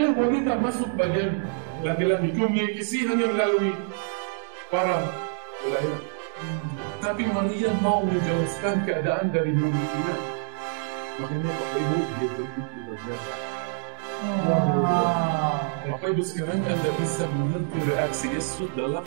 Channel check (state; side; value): silent; left; digital silence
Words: wanita masuk bagian laki-laki. Komunikasi hanya melalui para pelayan. Tapi Maria mau menjelaskan keadaan dari mulutnya. Makanya Bapak Ibu dia begitu berjasa. Bapak Ibu sekarang Anda bisa mengerti reaksi Yesus dalam